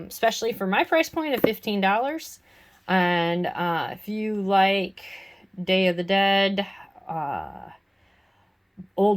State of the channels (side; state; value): both; identical; correlation 1.00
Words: for my price point of $15. And if you like Day of the Dead,